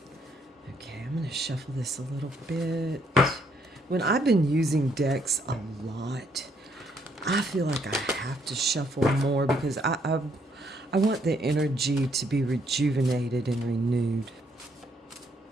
Okay, I'm going to shuffle this a little bit. When I've been using decks a lot, I feel like I have to shuffle more because I want the energy to be rejuvenated and renewed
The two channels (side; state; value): both; normal; correlation 0.70